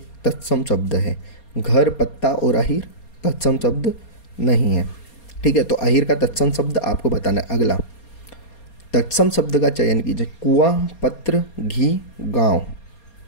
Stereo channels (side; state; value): right; late; 4.3 ms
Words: तत्सम शब्द है। घर, पत्ता और अहीर तत्सम शब्द नहीं है। ठीक है, तो अहीर का तत्सम शब्द आपको बताना है। अगला तत्सम शब्द का चयन कीजिए। कुआं, पत्र, घी, गांव।